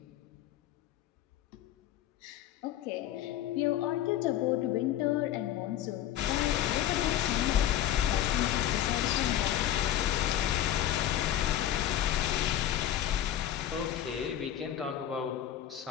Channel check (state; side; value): quieter; right; 11.8 dB